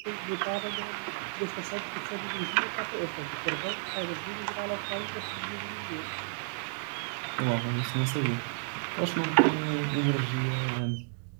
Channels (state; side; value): silent; left; 56 dB below the other